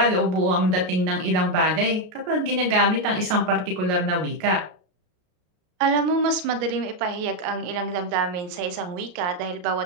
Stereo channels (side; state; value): left; late; 33 ms